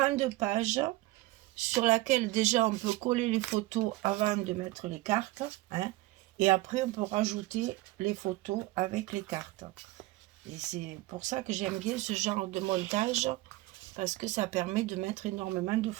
page sur laquelle déjà on peut coller les photos avant de mettre les cartes, hein, et après on peut rajouter les photos avec les cartes. Et c'est pour ça que j'aime bien ce genre de montage, parce que ça permet de mettre énormément de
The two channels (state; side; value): quieter; left; 19.0 dB